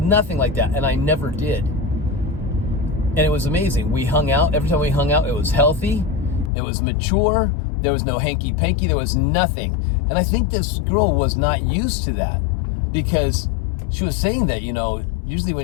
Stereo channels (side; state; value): right; drops out; at 6.5 s